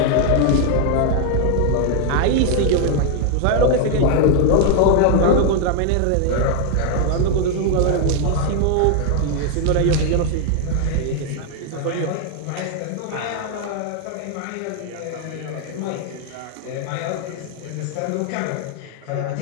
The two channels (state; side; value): different; both; correlation 0.00